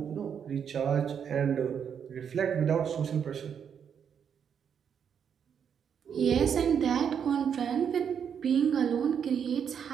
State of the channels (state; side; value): quieter; left; 7.7 dB